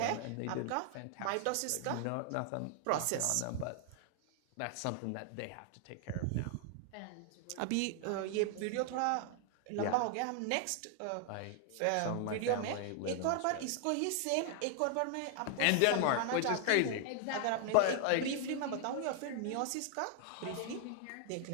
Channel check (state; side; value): different; both; correlation 0.00